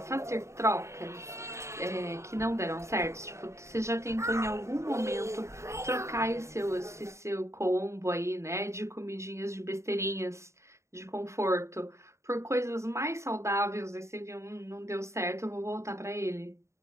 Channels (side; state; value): left; late; 0.14 ms